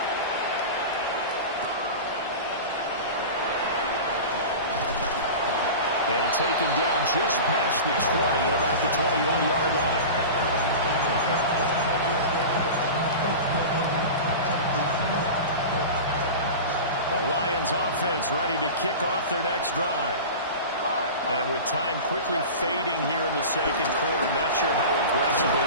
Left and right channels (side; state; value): both; inverted; correlation -0.31